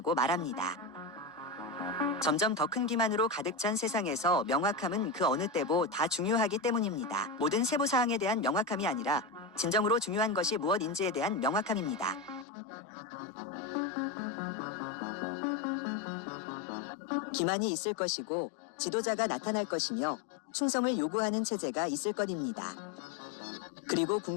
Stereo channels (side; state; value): right; drops out; at 12.5 s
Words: 말합니다. 점점 더 큰 기만으로 가득 찬 세상에서 명확함은 그 어느 때보다 중요하기 때문입니다. 모든 세부사항에 대한 명확함이 아니라 진정으로 중요한 것이 무엇인지에 대한 명확함입니다. 기만이 있을 것이고 지도자가 나타날 것이며 충성을 요구하는 체제가 있을 것입니다. 그리고